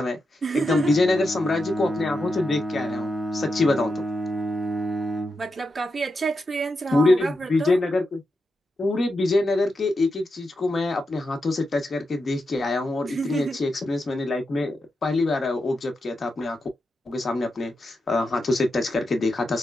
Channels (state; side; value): normal; both; correlation 0.87